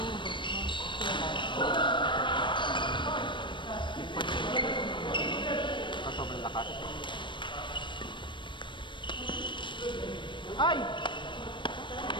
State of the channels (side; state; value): right; late; 0.23 ms